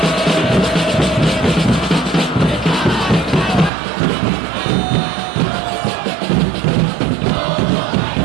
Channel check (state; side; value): drops out; left; at 3.7 s